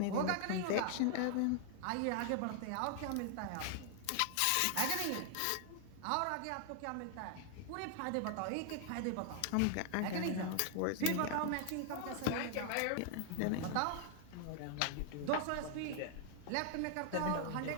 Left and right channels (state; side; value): different; both; correlation 0.00